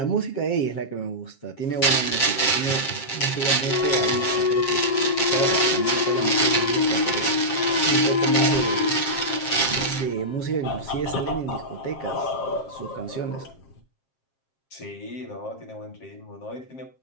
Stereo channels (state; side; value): late; right; 7.5 ms